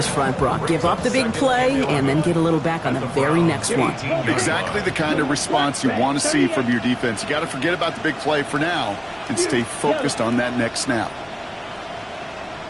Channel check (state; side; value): identical; both; correlation 1.00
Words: front, Brock. Give up the big play and then get a little back on the very next one. Exactly the kind of response you want to see from your defense. You got to forget about the big play for now and stay focused on that next snap.